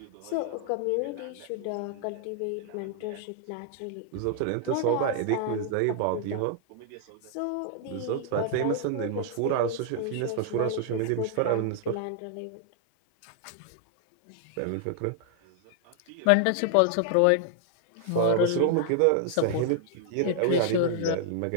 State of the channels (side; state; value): both; different; correlation -0.01